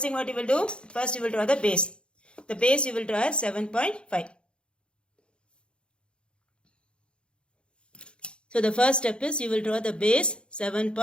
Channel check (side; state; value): right; late; 0.055 ms